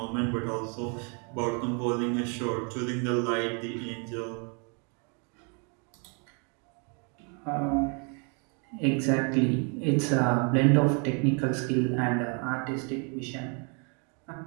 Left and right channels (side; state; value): left; quieter; 36.5 dB